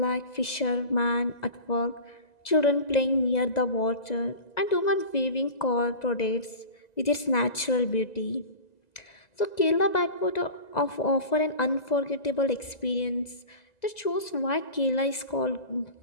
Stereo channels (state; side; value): late; right; 2.0 ms